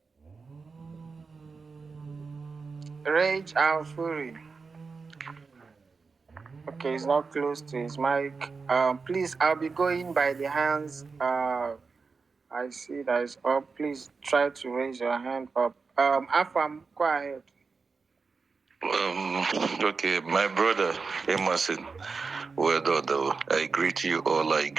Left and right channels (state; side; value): quieter; left; 4.7 dB